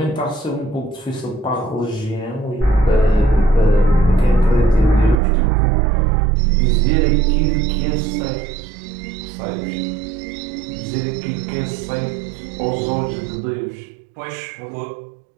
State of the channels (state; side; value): drops out; left; at 5.2 s